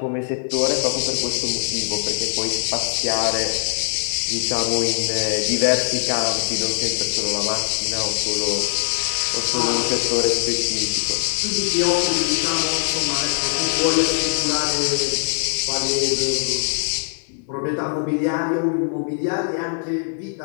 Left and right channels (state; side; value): silent; right; 64 dB below the other